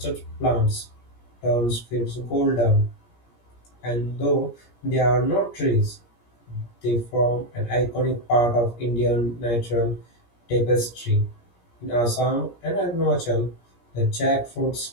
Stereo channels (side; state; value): right; late; 17 ms